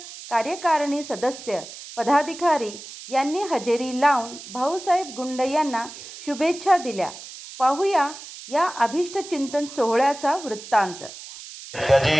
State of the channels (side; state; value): right; noise; hiss, 14 dB below the sound